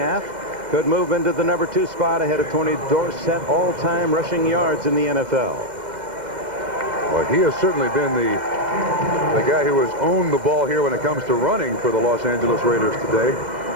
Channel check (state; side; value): late; left; 2.0 ms